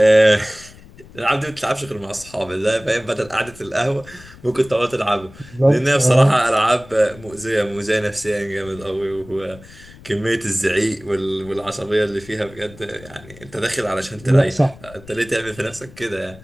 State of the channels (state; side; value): noise; left; rumble, 20 dB below the sound